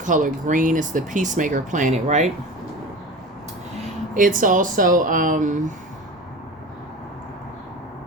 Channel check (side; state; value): both; normal; correlation 0.33